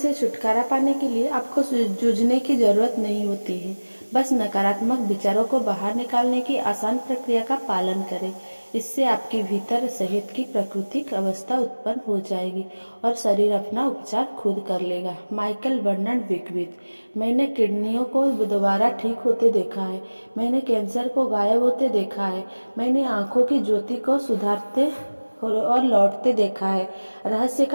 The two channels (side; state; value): both; inverted; correlation -1.00